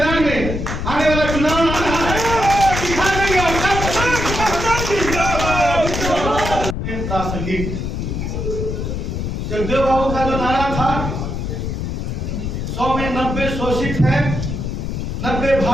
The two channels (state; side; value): noise; left; rumble, 3 dB below the sound